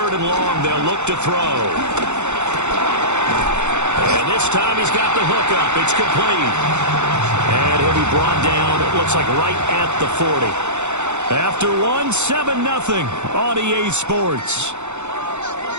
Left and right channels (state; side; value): late; left; 0.83 ms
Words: and long, they'll look to throw. And this time he's got the hook up. It's complete. And he'll be brought down, it looks like right at the 40. After 7-0 on EA Sports.